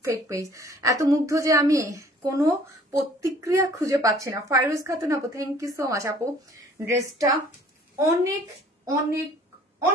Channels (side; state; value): both; normal; correlation 0.54